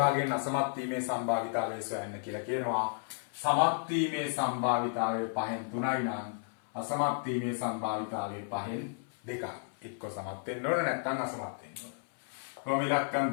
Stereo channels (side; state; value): right; silent; 56 dB below the other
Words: අසමත් වීමේ සම්භාවිතාවය සොයන්න කියලා කියනවා. සමත් වීමේ සම්භාවිතාවය 5න් 3යි නම් අසමත් වීමේ සම්භාවිතාවය 5න් 2යි. එක්ක සමත් වෙන්න ඕන නැත්නම් අසමත් වෙන්න ඕන. කොහොම